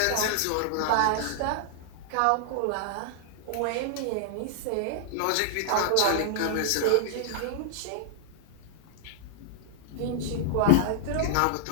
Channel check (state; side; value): different; both; correlation -0.01